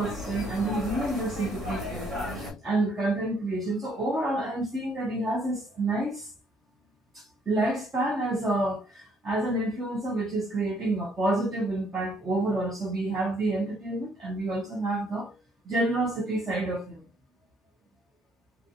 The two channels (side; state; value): both; normal; correlation 0.67